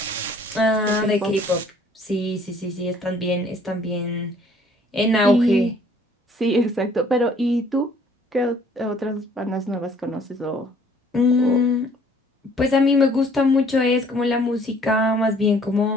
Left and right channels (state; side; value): normal; both; correlation 0.58